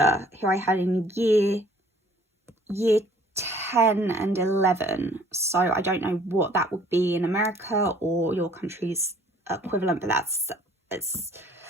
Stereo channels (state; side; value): normal; both; correlation 0.56